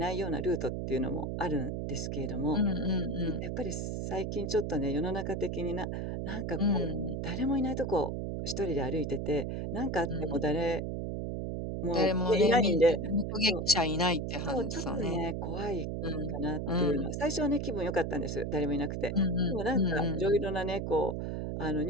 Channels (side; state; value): right; noise; hum, 3 dB below the sound